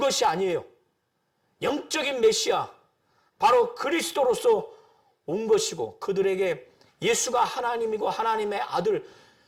아니에요. 영적인 메시아, 바로 그리스도로서 온 것이고, 그들에게 예수가 하나님이고 하나님의 아들,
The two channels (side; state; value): both; identical; correlation 1.00